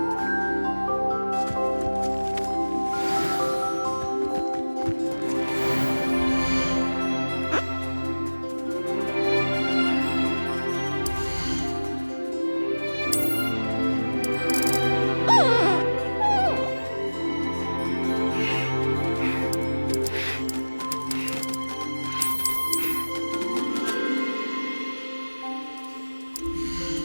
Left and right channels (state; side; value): inverted; both; correlation -1.00